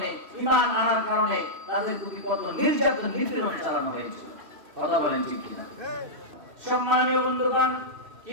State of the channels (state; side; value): late; left; 3.0 ms